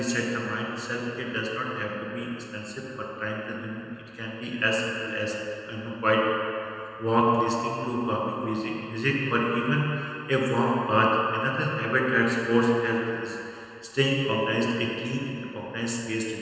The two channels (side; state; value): both; identical; correlation 1.00